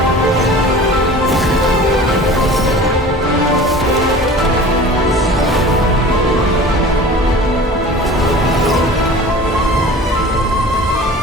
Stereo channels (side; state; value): both; normal; correlation 0.41